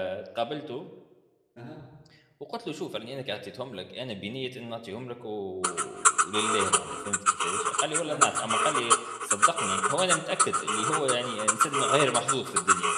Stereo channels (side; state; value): both; identical; correlation 1.00